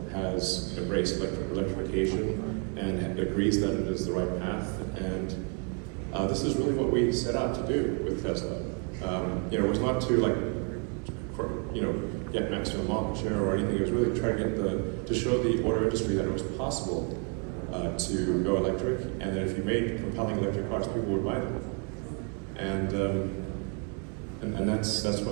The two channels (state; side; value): quieter; left; 36.6 dB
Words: has embraced electrification and agrees that it is the right path. And this is really what we set out to do with Tesla. It was not to get maximum market share or anything. It was really to try to show the auto industry that it was possible to go electric, and that if you made compelling electric cars, people would buy them. And that's